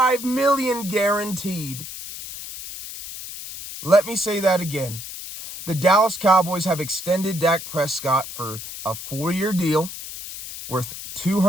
million guaranteed. Let me say that again. The Dallas Cowboys have extended Dak Prescott for a 4-year deal worth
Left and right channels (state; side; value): noise; left; hiss, 10 dB below the sound